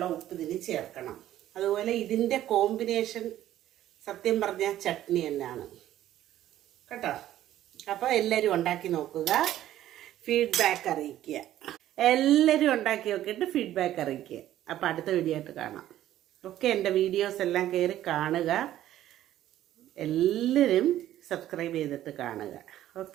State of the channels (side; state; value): left; quieter; 13.0 dB